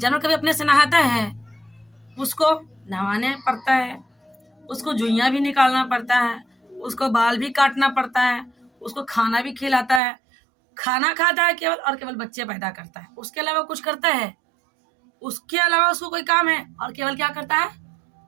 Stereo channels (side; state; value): left; drops out; at 10.0 s